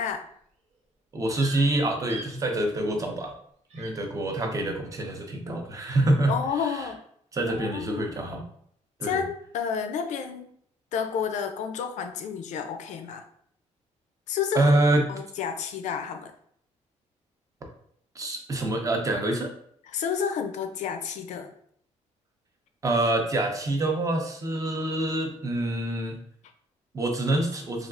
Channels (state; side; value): normal; both; correlation 0.61